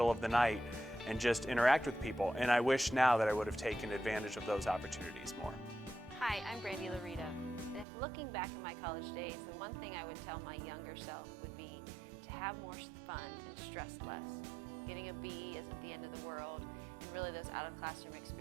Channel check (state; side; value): drops out; left; at 7.9 s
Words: of the night, and just interact with people. And I wish now that I would have taken advantage of those opportunities more. Hi, I'm Brandy Larita. And if looking back at my college days, the one thing I would tell my younger self would be to have more fun and stress less. Getting a B isn't the end of the world, and really those out-of-classroom